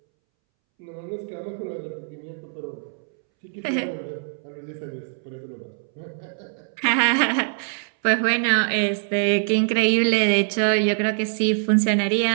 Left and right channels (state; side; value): silent; left; 63 dB below the other